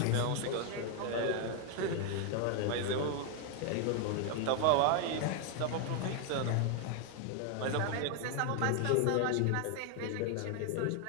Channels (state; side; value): different; both; correlation 0.01